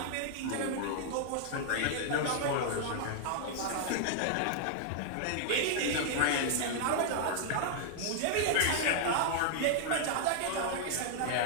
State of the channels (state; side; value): different; both; correlation -0.01